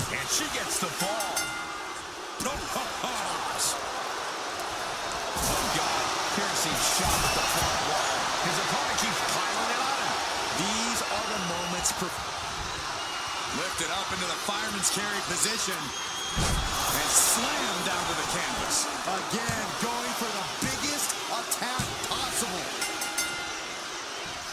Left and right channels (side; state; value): both; identical; correlation 1.00